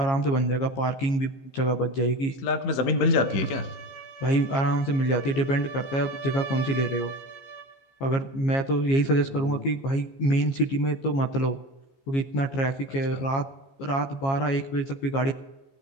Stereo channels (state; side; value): late; right; 15 ms